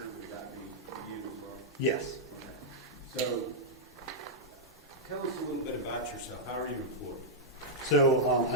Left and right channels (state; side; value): normal; both; correlation -0.07